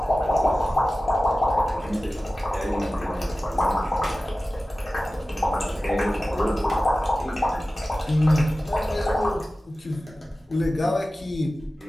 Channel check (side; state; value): both; normal; correlation 0.96